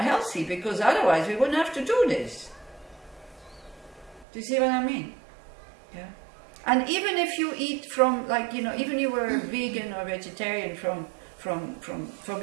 healthy, because otherwise we wouldn't have to do this. Do you see what I mean? Yeah. And even if you eat from, like, you know, even you were vegan or vegetarian from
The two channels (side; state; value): left; drops out; at 4.2 s